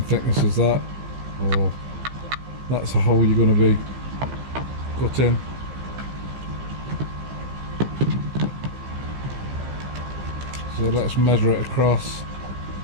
thickness as that, or that's a hole you're going to be cutting. So let's measure it across.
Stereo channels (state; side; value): late; left; 15 ms